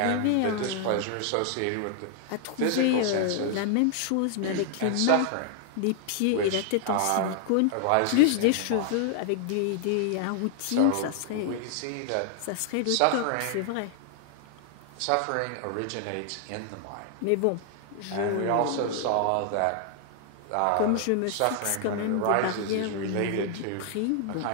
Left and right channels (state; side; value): different; both; correlation 0.00